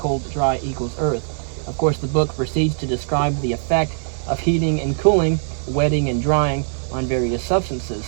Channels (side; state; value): left; silent; 65 dB below the other